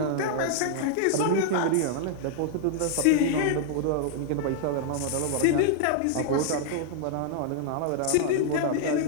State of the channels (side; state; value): both; different; correlation -0.01